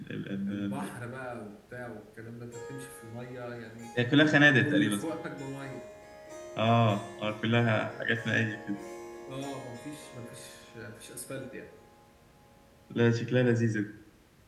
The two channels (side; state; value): both; identical; correlation 1.00